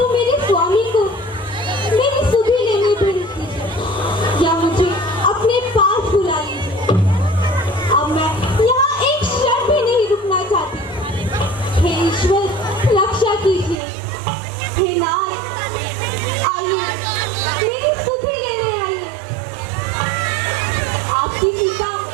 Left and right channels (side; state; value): left; drops out; at 13.8 s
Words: मेरे स्वामी को मेरी सुधि लेने प्रेरित कीजिए या मुझे अपने पास बुला लीजिए। अब मैं यहाँ एक क्षण भी नहीं रुकना चाहती। हे ईश्वर, रक्षा कीजिए। हे नाथ, आइए मेरी सुधि लेने आइए। आपकी सीता